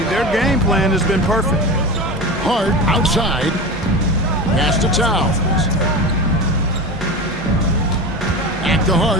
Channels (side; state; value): both; normal; correlation 0.26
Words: their game plan has been perfect. Hart outside. Pass to Towns. Back to